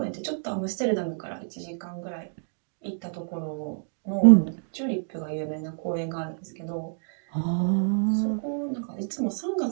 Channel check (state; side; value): silent; left; digital silence